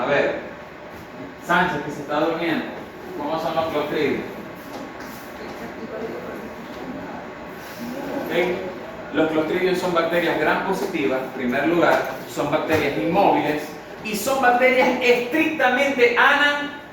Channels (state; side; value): identical; both; correlation 1.00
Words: ver, Sánchez que se está durmiendo, ¿cómo son los Clostridium? ¿Okay? Los Clostridium son bacterias gram positivas, en primer lugar, son bacterias inmóviles y son bacterias estrictamente